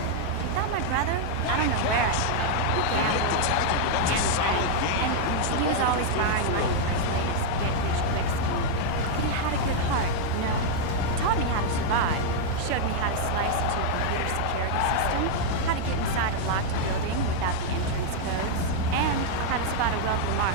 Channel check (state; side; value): different; both; correlation 0.00